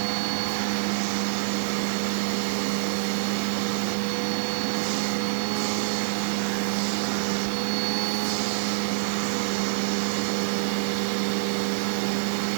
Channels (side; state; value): left; silent; 61 dB below the other